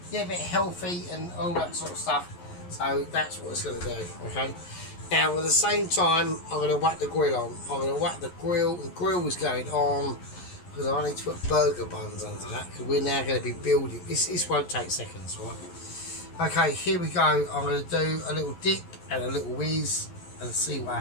bit healthy and all that sort of stuff. So that's what it's going to do. Okay. Now, at the same time, I'm going to whack the grill on. I'm going to whack the grill. The grill is going on because I need to put burger buns under that because we're now going to be building. This won't take seconds, right? Okay, here we go. I'm going to do a little dip and a little whiz and see what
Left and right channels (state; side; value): late; right; 11 ms